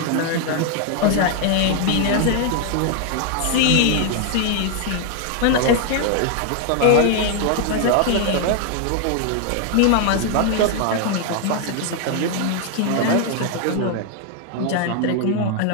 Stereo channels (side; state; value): both; different; correlation 0.00